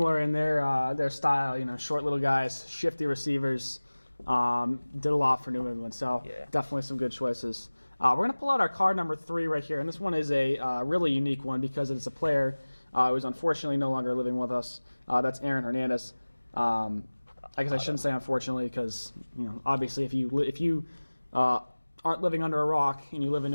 in their style. Short little guys, shifty receivers. Did a lot for New England, so definitely some good choices. We're going to pull out our card number 3 right here, and this one is a really unique one because it's a player who's unfortunately no longer living with us. That's Aaron Hernandez. I guess I shouldn't say unfortunately because, obviously if you aren't living under a rock and you live in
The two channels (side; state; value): both; inverted; correlation -1.00